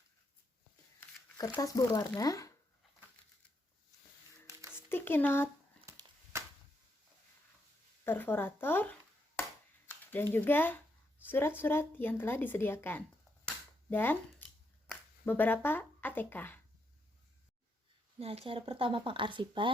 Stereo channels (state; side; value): normal; both; correlation 0.79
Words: kertas berwarna, sticky note, perforator, dan juga surat-surat yang telah disediakan, dan beberapa ATK. Nah, cara pertama